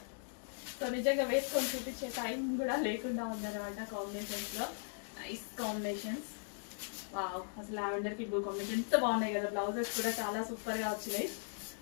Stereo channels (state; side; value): silent; right; digital silence